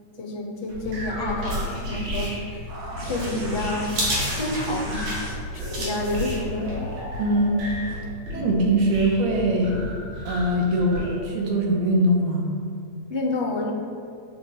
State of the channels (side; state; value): left; late; 8.9 ms